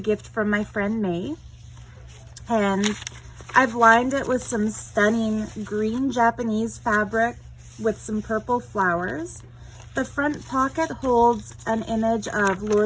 from my friend May. And I've lined it with some stunning green Japanese fabric with some purple flowers. The front pocket holds an image of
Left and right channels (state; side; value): identical; both; correlation 1.00